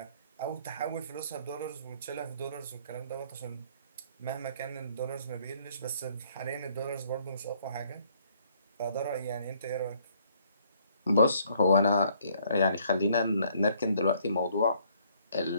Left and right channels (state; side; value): inverted; both; correlation -0.64